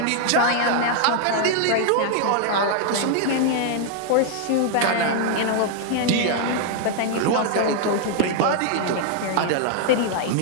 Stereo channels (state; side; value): different; both; correlation 0.00